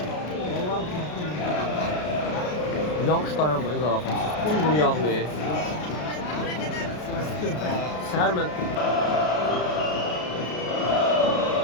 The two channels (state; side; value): late; right; 33 ms